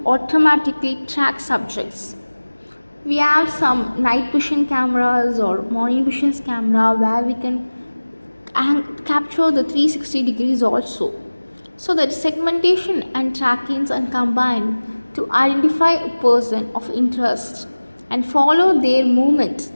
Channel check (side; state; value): both; inverted; correlation -1.00